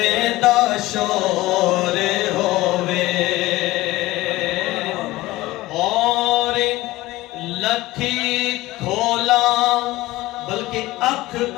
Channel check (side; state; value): right; quieter; 18.4 dB